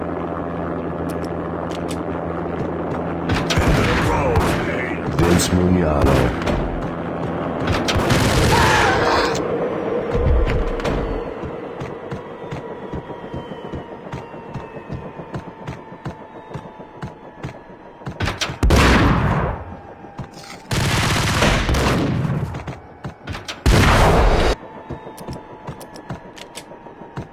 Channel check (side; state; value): both; identical; correlation 1.00